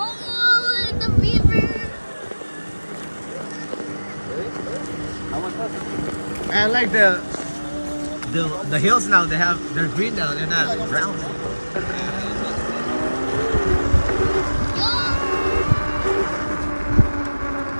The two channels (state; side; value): inverted; both; correlation -1.00